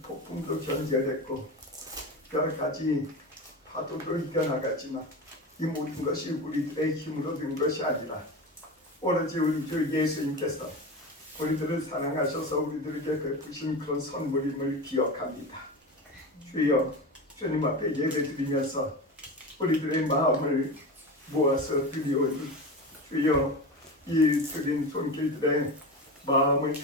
폭풍도 견뎌냈고 여러 가지 파도도 이겨나갔지만 이 모든 것이 우리들의 힘으로 된 것이 아니라 오로지 우리 주 예수님께서 우리들을 사랑하셔서 우리들에게 베푸신 그런 선물임을 기억합니다. 주여, 주님 앞에 예배드리면서 우리들의 마음을 모아서 드리오니 주여, 이 드린 손길들의 마음을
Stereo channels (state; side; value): normal; both; correlation 0.25